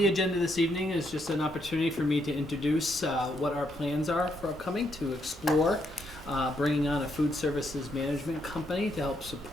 agenda this evening is just an opportunity for me to introduce what our plans are for upcoming, to explore bringing on a food services management company to help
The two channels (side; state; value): both; normal; correlation 0.76